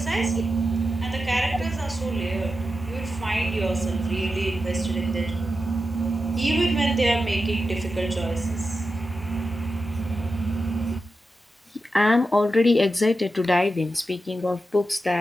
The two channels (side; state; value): both; normal; correlation 0.90